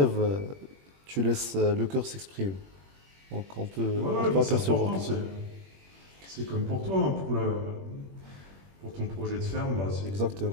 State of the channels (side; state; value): left; late; 21 ms